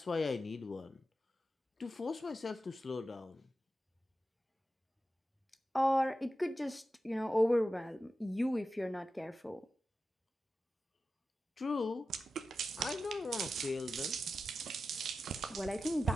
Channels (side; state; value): both; normal; correlation 0.92